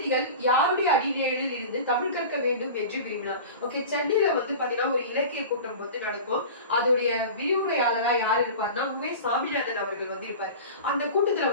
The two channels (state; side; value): inverted; both; correlation -0.34